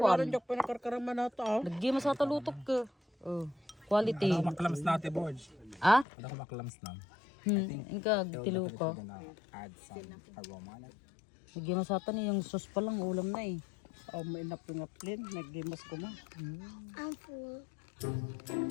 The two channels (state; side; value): drops out; right; at 6.1 s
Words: Kwan. jok pinakarkaraman na ito. Nagima sa talutok ka. Oh. Quality. Maklams na ate Borge. Ah? Ano ko maklams na? Inka, tilo ko. Gonna add some aroma on it. Nagima sa ni yung sauce pa lang ulam na eh. Oh, may napingaplin. Naggimas ko ma. I'm full.